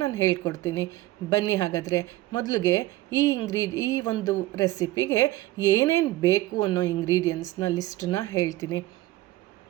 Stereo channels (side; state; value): left; quieter; 17.1 dB